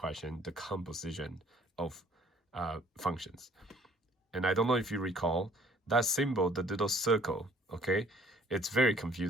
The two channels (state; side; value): normal; both; correlation 0.57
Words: the composition of functions. And I don't know if you recall that symbol, the little circle. Okay, it's very